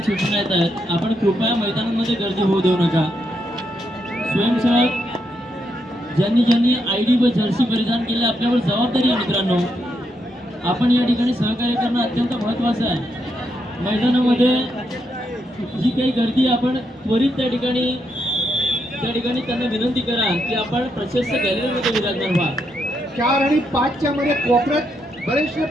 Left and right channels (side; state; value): both; normal; correlation 0.80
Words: सूचना येत आहेत, आपण कृपया मैदानामध्ये गर्दी होऊ देऊ नका. स्वयंसेवक ज्यांनी ज्यांनी ID व जर्सी परिधान केले आपल्यावर जबाबदारी आहे मित्रांनो. आपण या ठिकाणी सहकार्य करणं अत्यंत महत्त्वाचं आहे. मैदानामध्ये जी काही गर्दी आपण त्वरित त्या ठिकाणी त्यांना विनंती करा की आपण प्रशस्त गॅलरीमध्ये विराजमान व्हा. 4 आणि 5 च्या मध्ये कोपऱ्यात बरेचसे